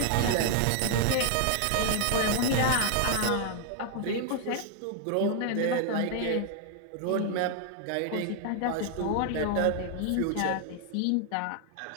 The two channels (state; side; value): different; both; correlation 0.00